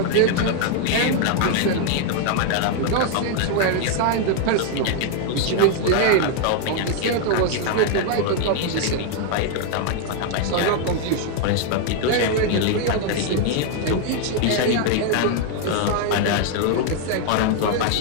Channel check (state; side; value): different; both; correlation 0.00